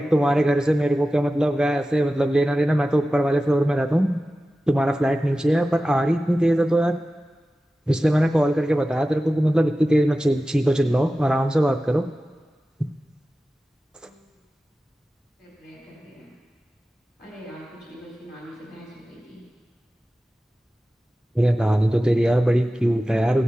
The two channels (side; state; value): both; normal; correlation 0.95